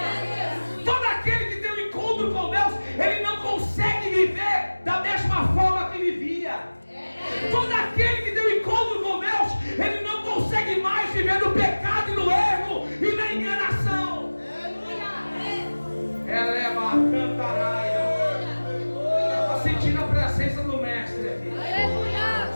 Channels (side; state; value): both; inverted; correlation -1.00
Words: Todo aquele que tem um encontro com Deus, ele não consegue viver da mesma forma que vivia. Todo aquele que tem um encontro com Deus, ele não consegue mais viver no pecado e no erro e na enganação. Ela é uma cantaraia. Estou sentindo a presença do mestre aqui.